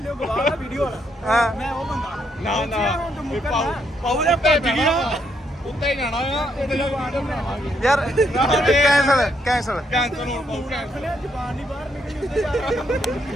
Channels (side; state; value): both; normal; correlation 0.75